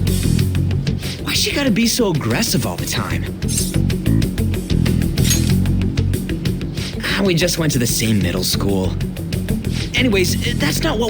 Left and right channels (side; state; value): both; identical; correlation 1.00